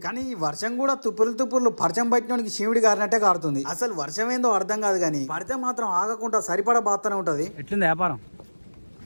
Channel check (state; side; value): inverted; both; correlation -1.00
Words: కానీ ఈ వర్షం కూడా తుప్పుర్లు పరిచయం పట్టినోనికి శివుడి గారినట్టే కారుతుంది. అసలు వర్షం ఏందో అర్థం కాదు కానీ పడితే మాత్రం ఆగకుండా సరిపడా బాత్తనే ఉంటది. ఎట్లుంది వ్యాపారం?